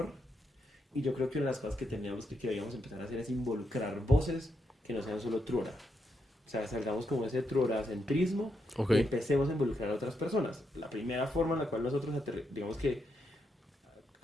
Y yo creo que una de las cosas que teníamos que debíamos empezar a hacer es involucrar voces que no sean solo Trora. O sea, salgamos como ese troracentrismo Ok. y empecemos a involucrar a otras personas. La primera forma en la cual nosotros, digamos que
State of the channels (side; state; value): both; normal; correlation 0.82